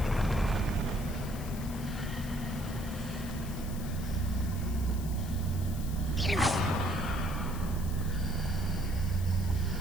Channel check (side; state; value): left; noise; hiss, 15 dB below the sound